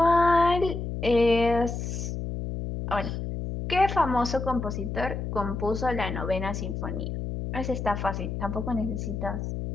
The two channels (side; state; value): left; noise; hum, 4 dB below the sound